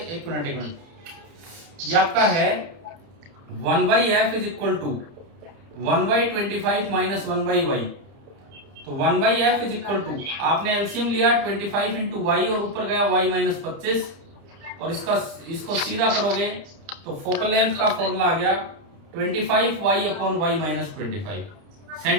एक मिनट, ये आपका है 1/f is equal to 1/25 minus 1/y, तो 1/f इज इक्वल टू, आपने एलसीएम लिया 25 इंटू वाई और ऊपर गया y -25, और इसको सीधा करोगे तो फोकल लेंथ का फॉर्मूला आ गया 25y/y-25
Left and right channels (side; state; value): left; late; 30 ms